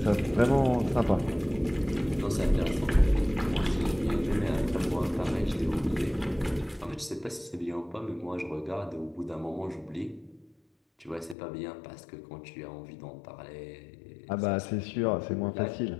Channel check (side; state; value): right; drops out; at 11.4 s